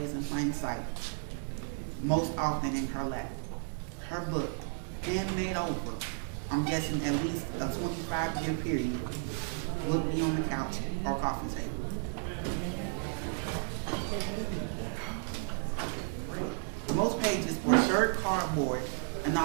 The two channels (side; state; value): left; silent; 56 dB below the other